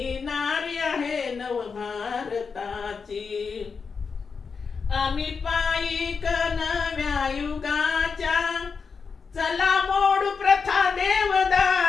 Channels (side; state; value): right; quieter; 5.4 dB